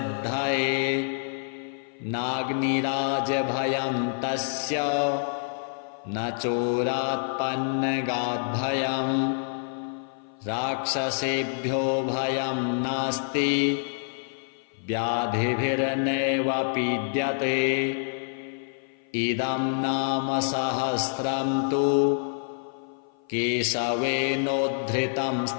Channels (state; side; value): silent; right; 56 dB below the other